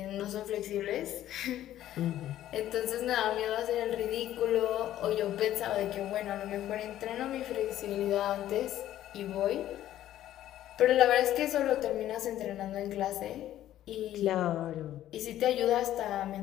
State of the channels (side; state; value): right; quieter; 12.7 dB